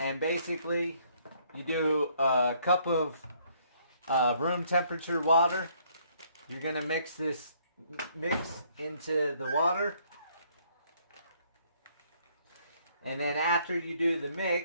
basically you do a cup of room temperature water. You're going to mix this mix into the water. And then after you do the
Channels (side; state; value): both; inverted; correlation -0.65